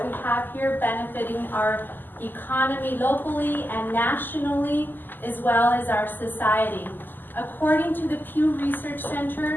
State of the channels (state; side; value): late; right; 0.090 ms